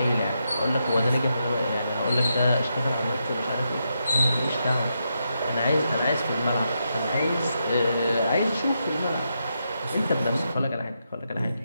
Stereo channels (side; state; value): both; inverted; correlation -0.83